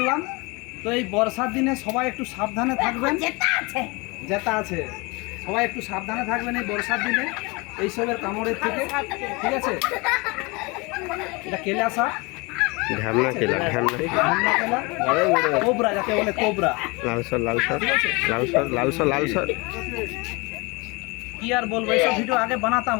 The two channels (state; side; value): quieter; right; 26.9 dB